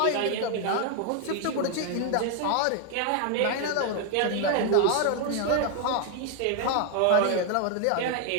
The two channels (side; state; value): both; different; correlation 0.01